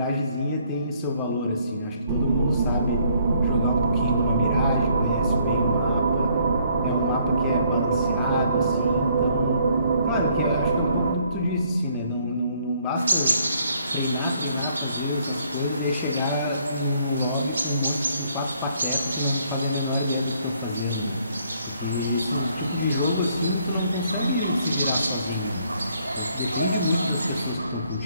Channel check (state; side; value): inverted; both; correlation -0.66